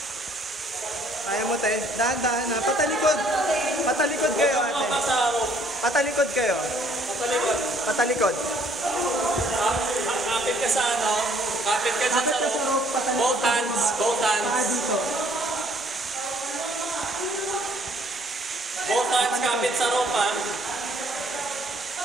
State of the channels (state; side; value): normal; both; correlation 0.62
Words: Kaya mo, te. Dahan-dahan na. Patalikod. Patalikod kayo, ate. Patalikod kayo. Patalikod. Patalikod. Kapit ka sa ano? Kapit ka dyan sa rope. Both hands. Both hands. Both hands kapit sa rope, ha?